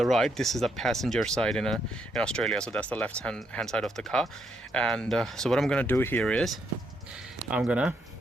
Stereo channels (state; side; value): normal; both; correlation 0.76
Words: right. This is the passenger side in Australia, so that's the left hand side of the car. And so what I'm gonna do here is I'm gonna